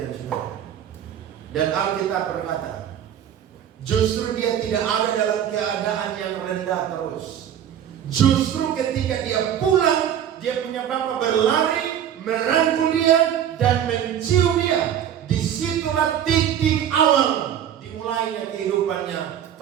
saudara. Dan Alkitab berkata, justru dia tidak ada dalam keadaan yang rendah terus. Justru ketika dia pulang, dia punya bapa berlari, merangkul dia dan mencium dia. Disitulah titik awal dimulainya kehidupannya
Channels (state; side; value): quieter; left; 9.8 dB